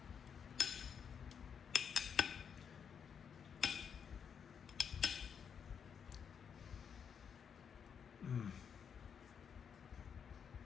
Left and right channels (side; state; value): right; quieter; 7.2 dB